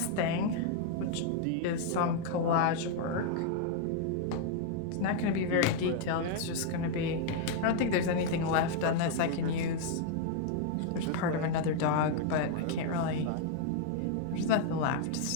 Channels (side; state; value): both; different; correlation 0.00